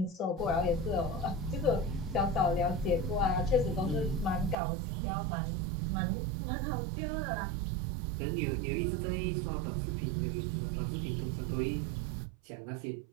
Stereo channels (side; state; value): left; drops out; at 4.5 s